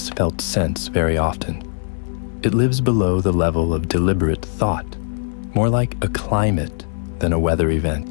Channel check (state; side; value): silent; right; digital silence